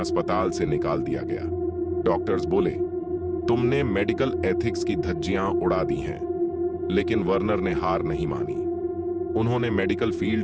से निकाल दिया गया। डॉक्टर्स बोले, तुमने मेडिकल एथिक्स की धज्जियां उड़ा दी हैं। लेकिन वर्नर ने हार नहीं मानी। उन्होंने मेडिकल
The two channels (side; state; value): both; identical; correlation 1.00